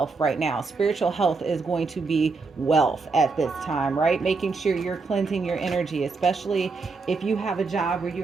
right now. Spiritual health is going to be wealth at this time, right? Making sure you're cleansing your energy, especially if you have a job where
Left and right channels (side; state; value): left; quieter; 4.2 dB